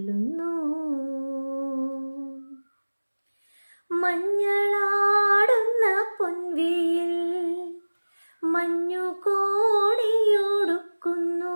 മഞ്ഞളാടുന്ന പൊൻവെയിൽ മഞ്ഞു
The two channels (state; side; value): inverted; both; correlation -1.00